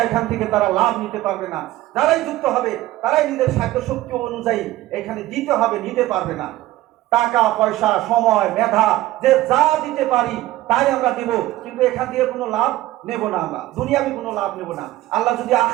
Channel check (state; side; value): quieter; left; 16.1 dB